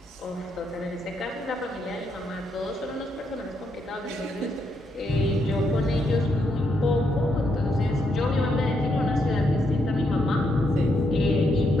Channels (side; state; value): both; normal; correlation 0.78